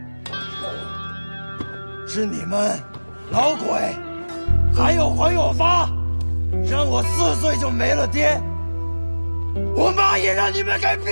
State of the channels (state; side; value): inverted; both; correlation -1.00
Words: 是你们老鬼，还有黄有发，让我4岁就没了爹，我妈也让你们给